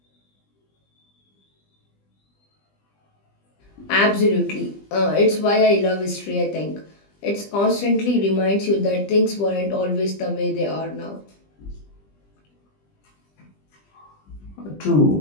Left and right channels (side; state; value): right; late; 20 ms